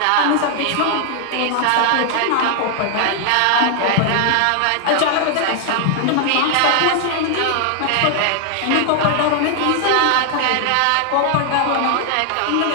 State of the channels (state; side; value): different; both; correlation 0.00